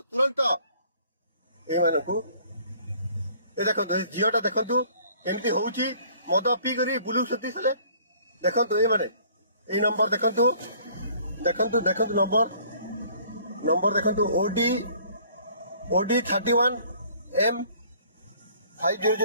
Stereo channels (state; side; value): inverted; both; correlation -0.56